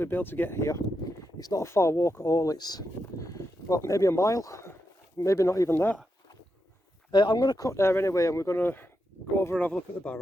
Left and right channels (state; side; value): normal; both; correlation 0.85